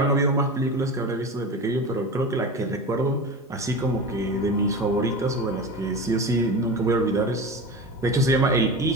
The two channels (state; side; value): normal; both; correlation 0.28